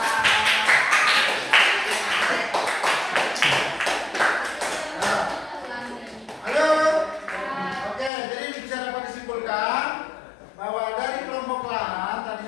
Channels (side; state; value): right; drops out; at 8.1 s